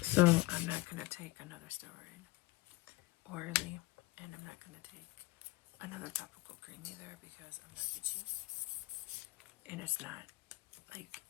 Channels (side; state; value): right; quieter; 20.5 dB